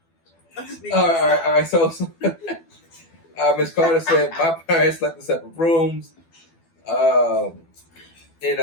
All right. So Ms. Carter said, my parents slept in separate rooms. And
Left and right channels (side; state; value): right; late; 12 ms